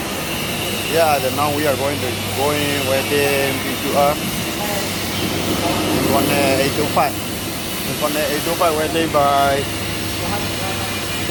Yeah, now we are going where the PQR. Inconel 825. Inconel 825 welding by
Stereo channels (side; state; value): both; identical; correlation 1.00